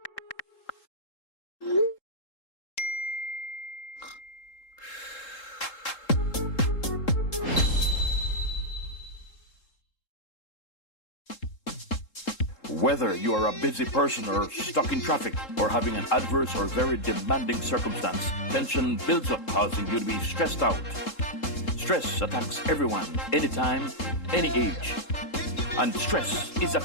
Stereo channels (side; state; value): right; late; 3.7 ms